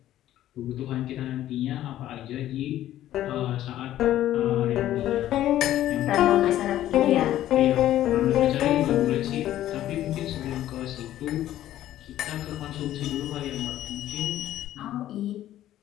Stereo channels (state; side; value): quieter; right; 13.1 dB